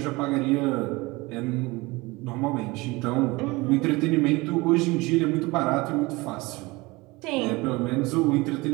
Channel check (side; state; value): left; quieter; 23.1 dB